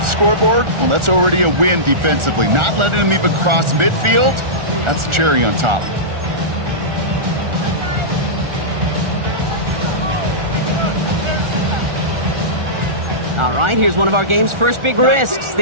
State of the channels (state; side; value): late; left; 1.4 ms